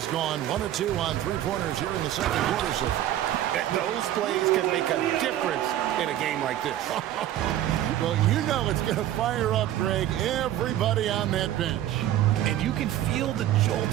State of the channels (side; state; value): left; quieter; 12.6 dB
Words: gone 1 of 2 on 3-pointers here in the second quarter so far. Those plays can make a difference in a game like this. Well, you know it's going to fire up, Greg, everybody on that bench. And you can feel the